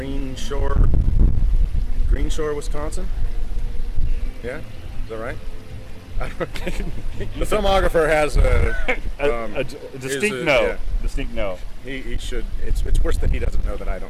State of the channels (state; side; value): identical; both; correlation 1.00